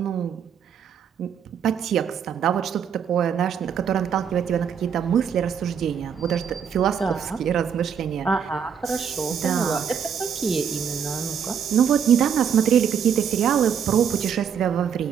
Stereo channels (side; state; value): left; quieter; 7.7 dB